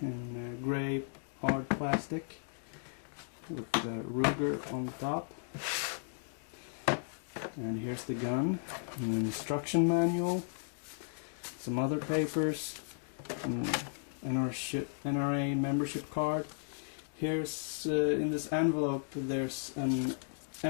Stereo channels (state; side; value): silent; right; digital silence